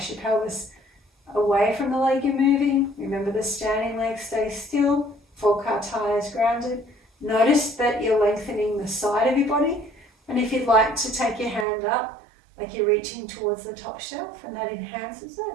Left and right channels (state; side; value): drops out; left; at 11.7 s